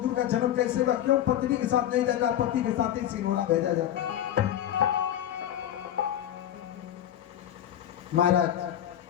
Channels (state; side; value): quieter; right; 11.2 dB